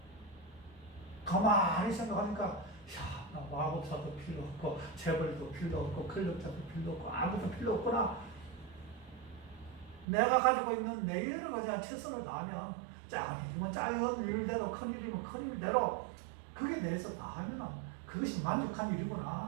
가만히 생각하니까 야, 나 마법사도 필요 없고 재벌도 필요 없고 권력자도 필요 없고 아무도 필요 없구나. 내가 가지고 있는 내 여러 가지 최선을 다하면 작은 일이면 작은 일대로 큰 일이면 큰 일대로 그게 내에서 다 하면 그것이 만족한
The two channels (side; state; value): left; drops out; at 10.1 s